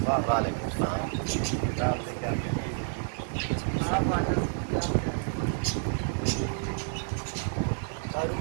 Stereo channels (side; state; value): left; silent; 58 dB below the other